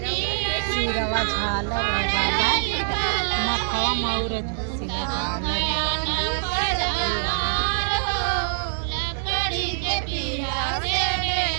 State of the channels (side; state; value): left; silent; digital silence